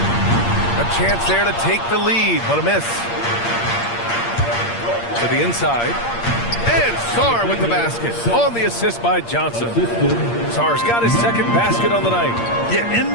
chance there to take the lead, but a miss. To the inside. And Sarr with the basket on the assist by Johnson. Sarr's got his second basket on the night. Yeah, in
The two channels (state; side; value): late; right; 8.6 ms